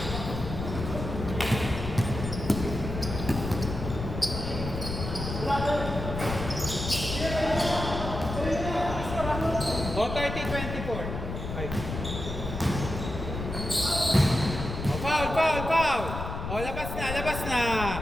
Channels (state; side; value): noise; left; rumble, 6 dB below the sound